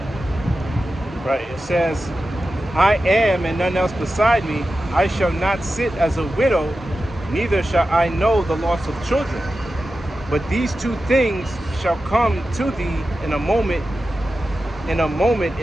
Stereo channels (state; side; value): normal; both; correlation 0.92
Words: Right, it says, I am and none else beside me. I shall not sit as a widow, neither shall I know the loss of children. But these two things shall come to thee in a moment